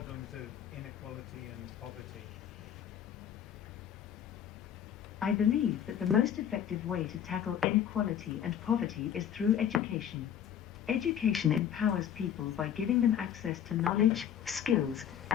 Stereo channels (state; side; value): quieter; right; 9.3 dB